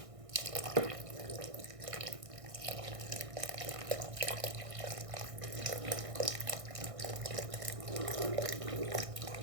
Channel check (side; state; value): left; late; 1.6 ms